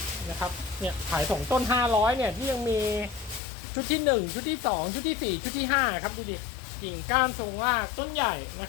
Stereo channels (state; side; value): drops out; right; at 3.4 s